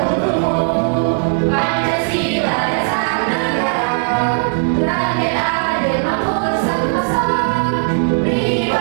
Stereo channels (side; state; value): left; silent; digital silence